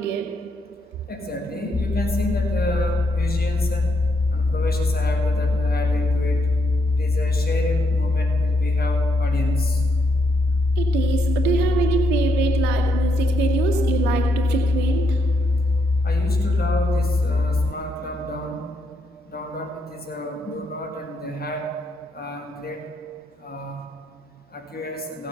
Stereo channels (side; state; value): both; normal; correlation 0.77